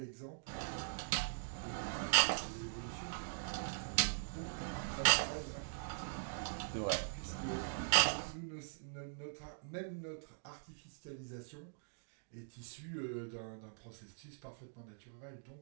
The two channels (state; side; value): silent; left; digital silence